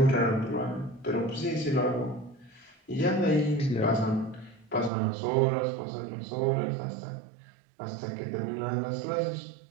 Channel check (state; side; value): drops out; left; at 4.9 s